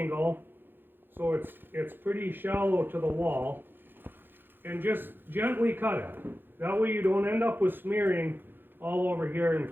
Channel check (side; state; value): left; late; 0.098 ms